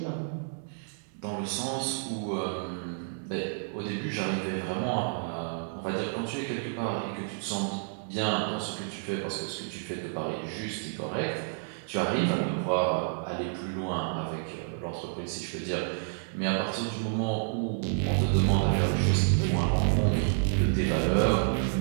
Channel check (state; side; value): silent; left; 58 dB below the other